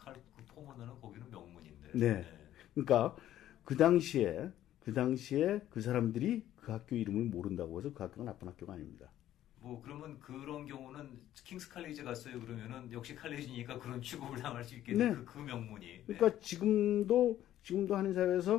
포모나는 거기는 명문인데. 네. 그러니까 그 당시에 그 사람들이 그 학교 이름을 모른다고 해서 그 학교가 나쁜 학교가 아닙니다. 그러면 그런 경우는 킹스 칼리지 갔어요 그러면은 역시 칼리지니까 그런 취급을 당할 수 있겠네. 네. 그 명문이. 그러니까 지금도 한인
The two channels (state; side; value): quieter; right; 12.6 dB